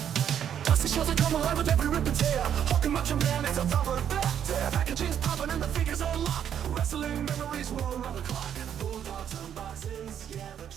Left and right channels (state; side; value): quieter; left; 9.2 dB